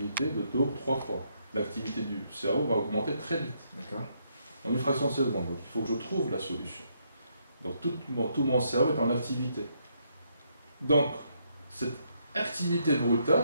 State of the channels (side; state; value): both; inverted; correlation -0.75